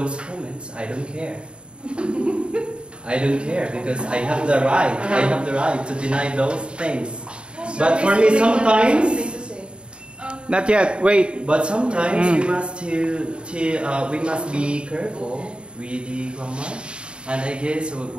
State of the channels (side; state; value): left; late; 0.054 ms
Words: comments, I don't care. I don't care, because I have the right. I have the right to deny those things. But for me, sometimes. Not yet. Wait. But sometimes we must be careful with the grammar, and I guess